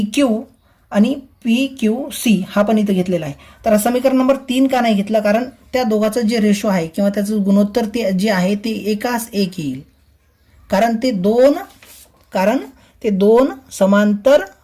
क्यू आणि पी क्यू सी हा पण इथं घेतलेला आहे. तर समीकरण नंबर 3 का नाही घेतलं, कारण त्या दोघांचं जे रेशो आहे किंवा त्याचं गुणोत्तर ते जे आहे ते एकास एक येईल, कारण ते दोन समांतर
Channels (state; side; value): identical; both; correlation 1.00